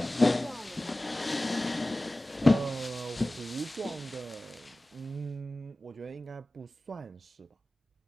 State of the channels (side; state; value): both; normal; correlation 0.97